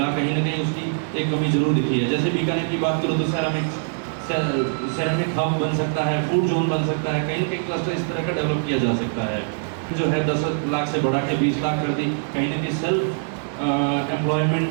कहीं ना कहीं उसकी एक कमी जरूर दिखी है। जैसे बीकानेर की बात करूँ तो सेरामिक हब बन सकता है, फूड जोन बन सकता है, कहीं ना कहीं क्लस्टर इस तरह का डेवलप किया जा सकता है। जो है 10 लाख से बढ़ा के 20 लाख कर दी, कहीं ना कहीं सेल्फ एम्प्लॉयमेंट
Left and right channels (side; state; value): left; silent; 63 dB below the other